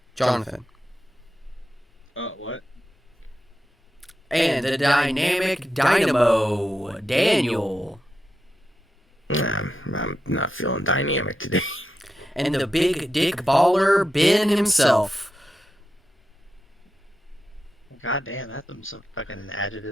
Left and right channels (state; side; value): normal; both; correlation 0.88